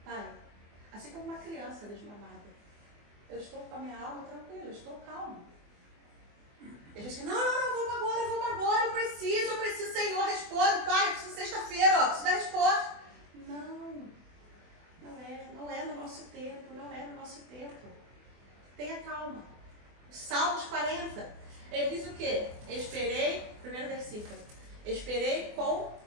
Pai, assim como uma criança desmamada. Eu estou com a minha alma tranquila, eu estou calmo. Ele diz que não, vamos agora, eu preciso, Senhor, responde, Pai, eu preciso sexta-feira, preciso da resposta. Não é no nosso tempo, não é no nosso tempo. Tenha calma. Salmos 40, ele diz o quê? Esperei, primeiro versículo, esperei com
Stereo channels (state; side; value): late; left; 24 ms